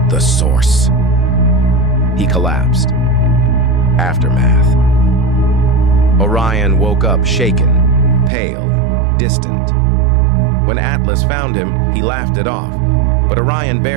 The Source. He collapsed. Aftermath. Orion woke up shaken, pale, distant. When Atlas found him, he laughed it off, but Orion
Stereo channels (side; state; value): left; drops out; at 8.3 s